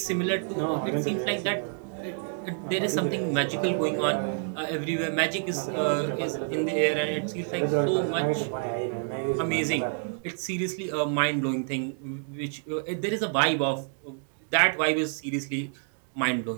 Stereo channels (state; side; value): silent; left; 56 dB below the other